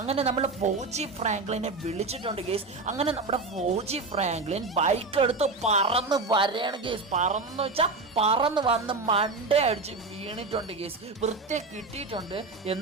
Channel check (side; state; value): left; quieter; 3.7 dB